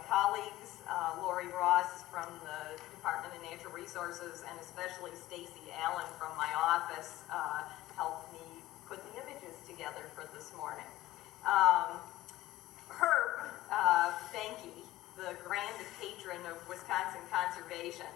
colleagues, Lori Ross from the Department of Natural Resources, and especially Stacy Allen from my office helped me put the images together for this morning. Herb Behnke, the grand patron of Wisconsin conservation,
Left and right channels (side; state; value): right; quieter; 16.1 dB